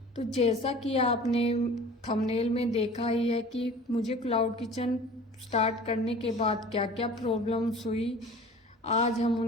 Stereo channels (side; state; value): both; normal; correlation 0.43